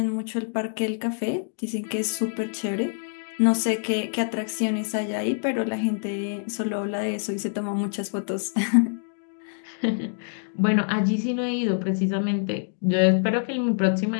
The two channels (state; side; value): silent; right; digital silence